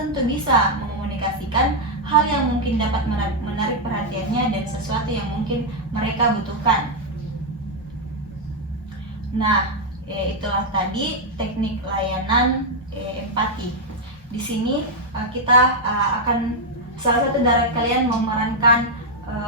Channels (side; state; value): both; normal; correlation -0.01